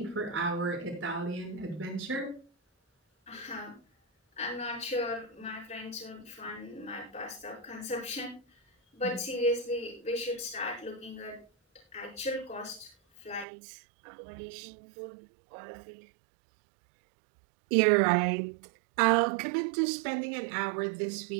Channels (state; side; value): drops out; left; at 13.5 s